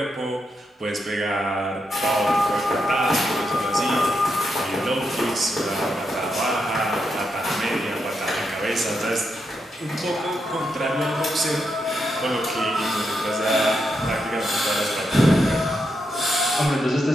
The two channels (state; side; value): normal; both; correlation 0.83